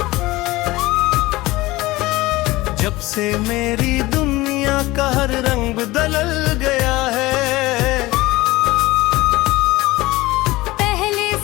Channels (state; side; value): quieter; right; 19.5 dB